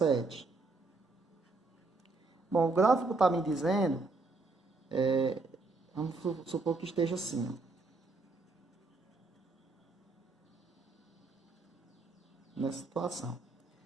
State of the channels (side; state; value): left; quieter; 3.5 dB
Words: Bom, o gráfico está me dizendo, vamos supor que esteja assim, ó, nessa situação.